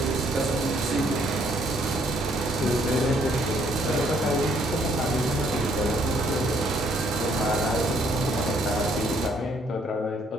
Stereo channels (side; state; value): both; normal; correlation 0.67